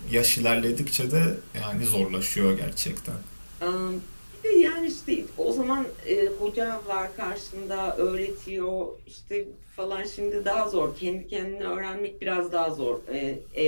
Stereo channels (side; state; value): both; inverted; correlation -1.00